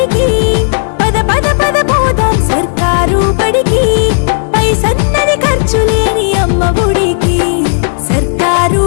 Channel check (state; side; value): silent; right; digital silence